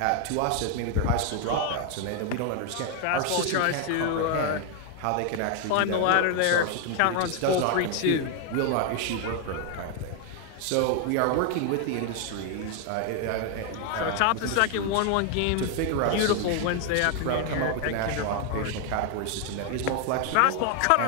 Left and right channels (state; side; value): different; both; correlation 0.00